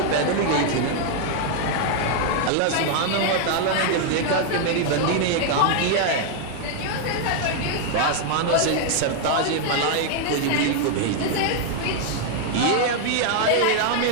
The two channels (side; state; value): both; different; correlation 0.00